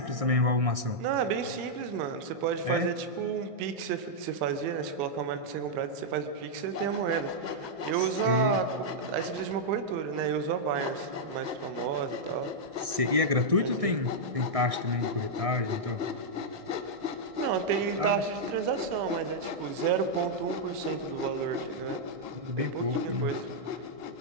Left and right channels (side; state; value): left; late; 1.6 ms